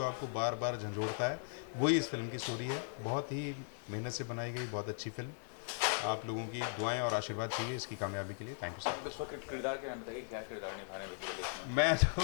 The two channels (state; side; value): silent; right; 52 dB below the other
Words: आपको बार बार झंझोड़ता है। वही इस फिल्म की स्टोरी है। बहुत ही मेहनत से बनाई गई बहुत अच्छी फिल्म। आप लोगों की दुआएं और आशीर्वाद चाहिए इसकी कामयाबी के लिए। Thank you sir. इस वक्त किरदार के नाम बताइए, क्या किरदार निभाने में? मैं